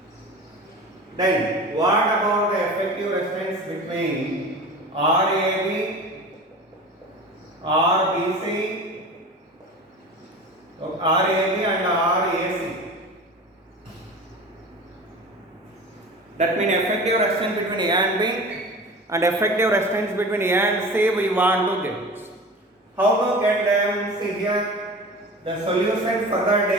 Then what about the effective resistance between RAB, RBC, RAB and RAC? That means effective resistance between A and B and effective resistance between A and C we want to get. How to get them? See here, the solution for that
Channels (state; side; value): normal; both; correlation 0.35